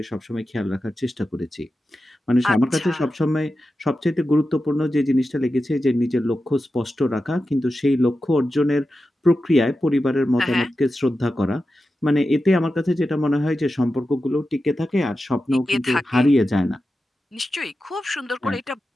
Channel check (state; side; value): normal; both; correlation 0.91